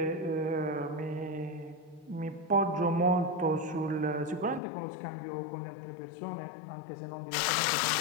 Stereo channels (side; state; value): right; drops out; at 4.6 s